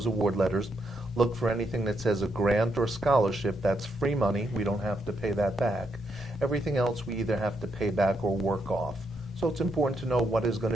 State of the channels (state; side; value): normal; both; correlation 0.79